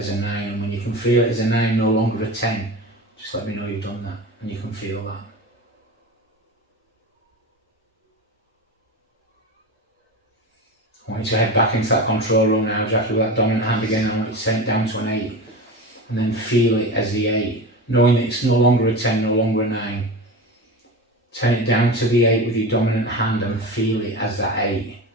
a 9. And when you can feel it as a 9, no longer a 10, just let me know you've done that and you can feel that. I want you to head back into that control room now, Jackie, with that dominant hand again. I want you to turn it down to an 8 and then feel it as the 8, knowing that it's no longer a 10, no longer a 9. Turn it down to the 8 with your dominant hand and feel it as that 8,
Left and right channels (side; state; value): both; normal; correlation 0.27